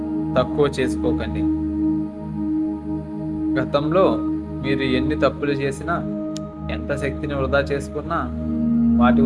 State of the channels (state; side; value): identical; both; correlation 1.00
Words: తక్కువ చేసుకోకండి. గతంలో మీరు ఎన్ని తప్పులు చేసినా, ఎంత శక్తిని వృధా చేసుకున్నా వాటి